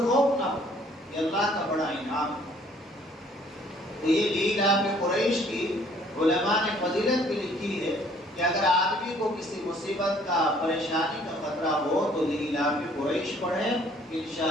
خوف نہ ہو، یہ اللہ کا بڑا انعام ہے۔ تو یہ لیلاف قریش کی علماء نے فضیلت بھی لکھی ہے کہ اگر آدمی کو کسی مصیبت کا، پریشانی کا خطرہ ہو تو لیلاف قریش پڑھے،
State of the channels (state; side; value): normal; both; correlation 0.59